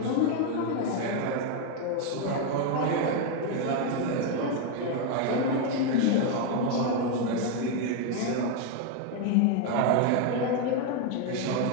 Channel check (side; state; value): both; different; correlation 0.01